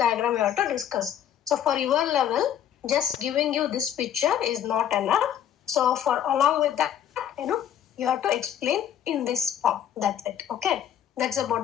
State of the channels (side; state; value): right; quieter; 9.9 dB